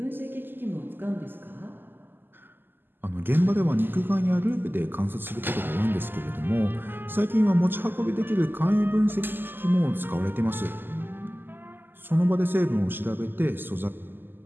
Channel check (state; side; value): late; left; 0.095 ms